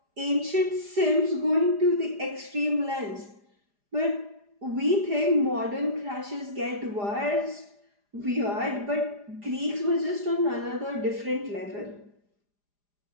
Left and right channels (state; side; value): late; left; 4.9 ms